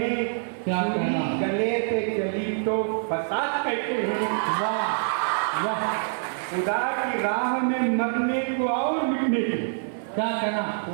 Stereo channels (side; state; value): left; silent; 57 dB below the other